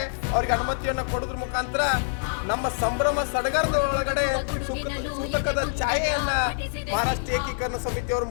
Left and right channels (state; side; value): silent; right; 57 dB below the other